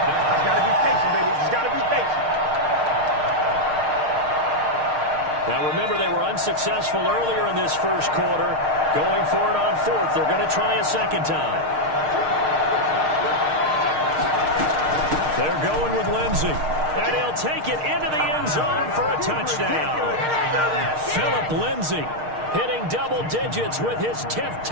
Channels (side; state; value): left; late; 6.5 ms